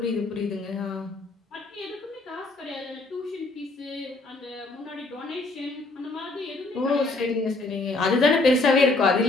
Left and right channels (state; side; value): quieter; right; 3.2 dB